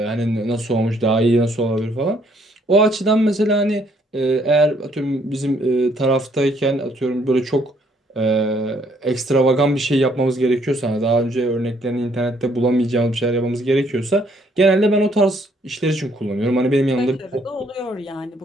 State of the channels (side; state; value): both; normal; correlation 0.67